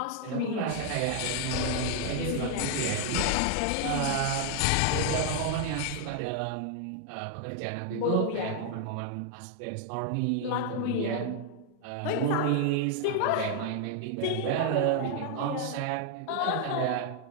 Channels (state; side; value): different; both; correlation 0.00